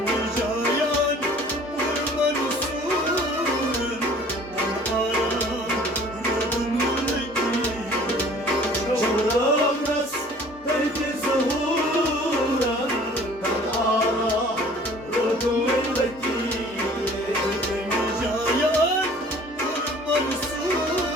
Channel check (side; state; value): both; normal; correlation 0.51